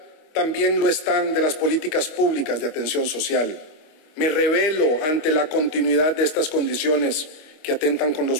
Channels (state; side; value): late; right; 25 ms